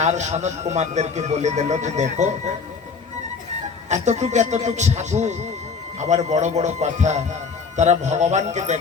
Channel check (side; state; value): right; quieter; 5.2 dB